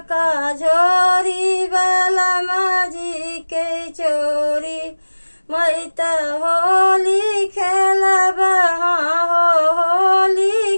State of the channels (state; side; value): inverted; both; correlation -1.00